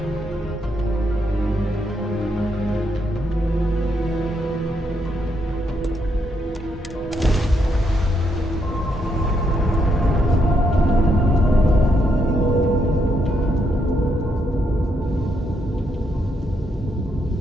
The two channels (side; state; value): both; normal; correlation 0.77